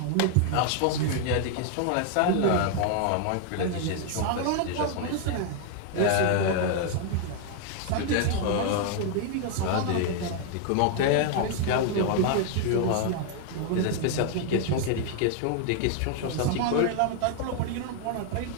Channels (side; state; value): both; different; correlation 0.00